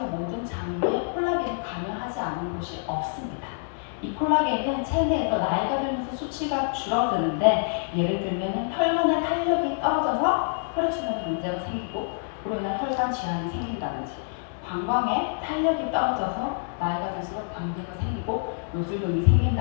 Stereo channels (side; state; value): right; silent; 58 dB below the other